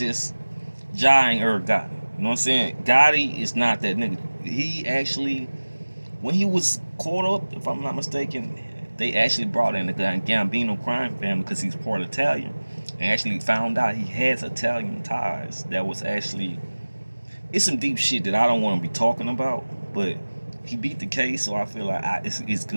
Irv Gotti. You know what I'm saying? Gotti is not that nigga. He actually, when he was caught up, if I'm not mistaken, they actually brought in the Gambino crime family because he's part Italian. And actually found out he has Italian ties. That was actually, it's some deep shit that I don't want to be talking about. But he beat the case, so I feel like it's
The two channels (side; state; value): both; inverted; correlation -1.00